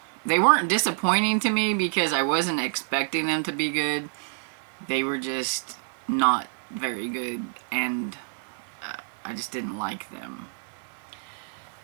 they weren't disappointing to me because I wasn't expecting them to be good. They were just not very good, and I just didn't like them.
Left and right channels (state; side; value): silent; left; digital silence